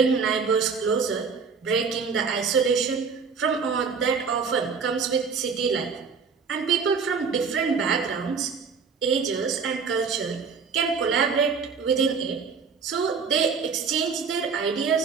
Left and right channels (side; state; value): left; quieter; 5.5 dB